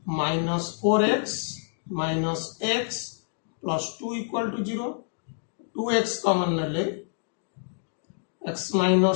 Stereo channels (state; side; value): silent; right; digital silence